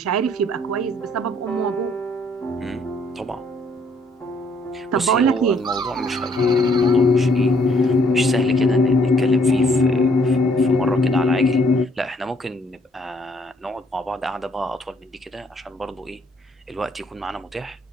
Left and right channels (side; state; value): both; normal; correlation 0.65